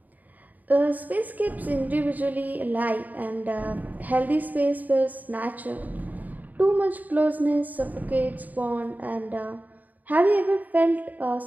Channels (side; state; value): left; late; 0.081 ms